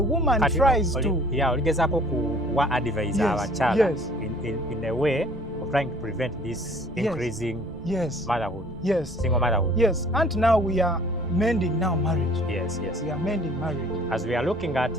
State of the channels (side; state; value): right; noise; rumble, 15 dB below the sound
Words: tries to oligezako kuwa advise abachala in a way of trying to prevent this increasing motherhood, single motherhood. Yes, and now we are mending marriage. Yes. We are mending marriage. As we are looking at